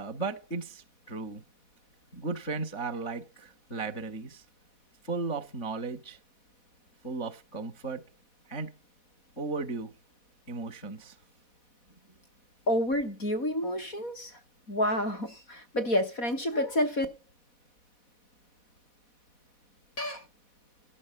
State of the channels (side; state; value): right; late; 4.2 ms